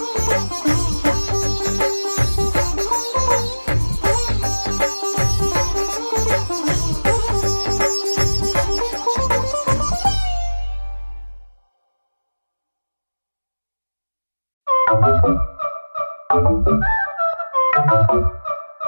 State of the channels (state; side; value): inverted; both; correlation -1.00